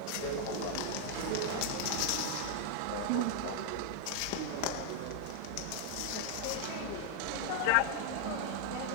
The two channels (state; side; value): different; both; correlation 0.00